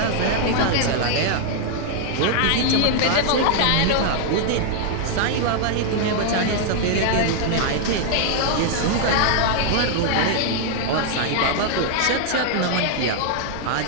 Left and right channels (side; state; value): both; different; correlation 0.00